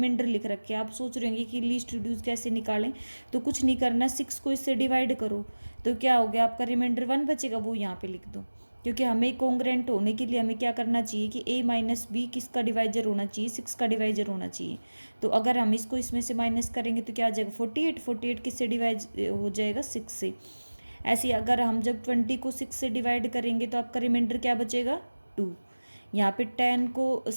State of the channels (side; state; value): both; inverted; correlation -1.00